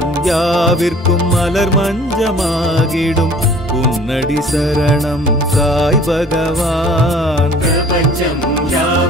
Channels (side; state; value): both; normal; correlation 0.50